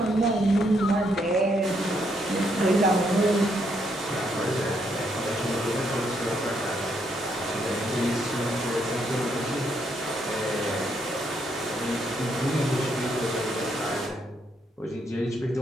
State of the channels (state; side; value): normal; both; correlation 0.75